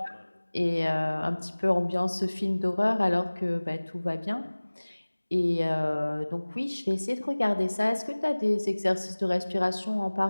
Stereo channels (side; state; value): both; inverted; correlation -1.00